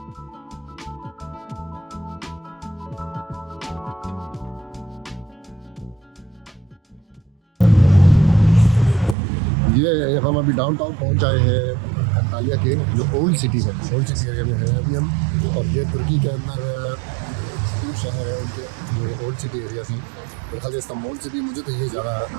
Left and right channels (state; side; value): drops out; left; at 9.2 s